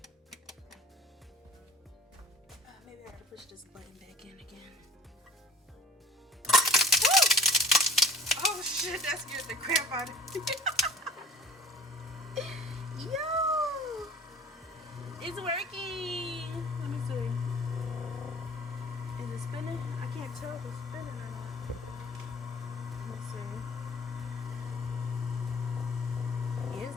Maybe I gotta push this button back in again. Woo! Oh shit, that scared the crap out of me. Yo! It's working! Let me see. Is it spinning? I can't tell if it's spinning or not. Let me see. It's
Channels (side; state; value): both; normal; correlation 0.44